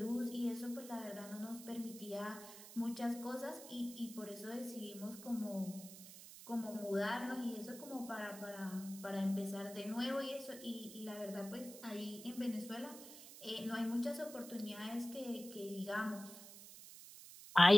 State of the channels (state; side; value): noise; right; hiss, 14 dB below the sound